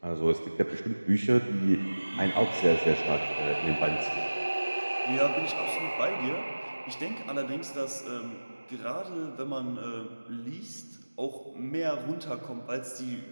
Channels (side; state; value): both; inverted; correlation -1.00